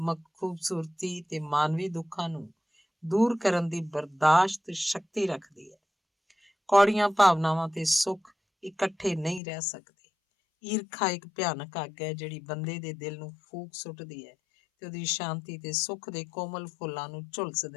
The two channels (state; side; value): drops out; right; at 9.4 s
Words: ਖੂਬਸੂਰਤੀ ਤੇ ਮਾਨਵੀ ਦੁੱਖਾਂ ਨੂੰ ਦੂਰ ਕਰਨ ਦੀ ਬਰਦਾਸ਼ਤ ਸ਼ਕਤੀ ਰੱਖਦੀ ਹੈ। ਕੌੜੀਆਂ ਭਾਵਨਾਵਾਂ ਤੇ ਸੁੱਖ ਇਕੱਠੇ ਨਹੀਂ ਰਹਿ ਸਕਦੇ। ਈਰਖਾ ਇੱਕ ਭਿਆਨਕ ਅੱਗ ਹੈ ਜਿਹੜੀ ਬੰਦੇ ਦੇ ਦਿਲ ਨੂੰ ਫੂਕ ਸੁੱਟਦੀ ਹੈ ਤੇ ਉਹਦੀ ਸ਼ਾਂਤੀ ਤੇ ਸੁੱਖ ਦੇ ਕੋਮਲ ਫੁੱਲਾਂ ਨੂੰ ਝੁਲਸ